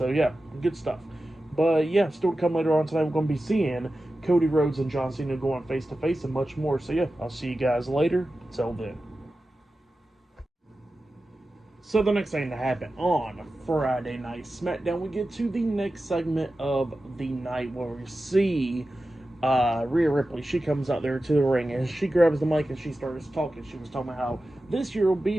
yeah, good stuff. But yeah, still to come later on tonight, we're going to be seeing Cody Rhodes and John Cena going face to face and much more. So yeah, I'll see you guys later. Till then. So the next thing to happen on Friday Night SmackDown, we get to the next segment of the night where we see Rhea Ripley. She comes out there to the ring and she grabs the mic and she starts talking. She was talking about how this year will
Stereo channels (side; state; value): both; normal; correlation 0.93